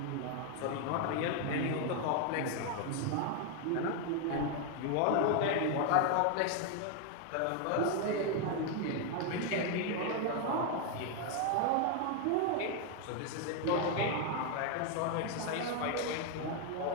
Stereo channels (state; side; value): different; both; correlation 0.00